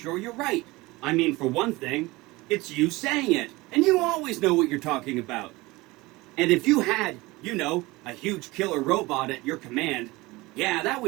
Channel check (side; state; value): left; quieter; 21.4 dB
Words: you're right. I mean, for one thing, it's you saying it, and you always know what you're talking about. And if you had, you know, a huge killer robot at your command, yeah, that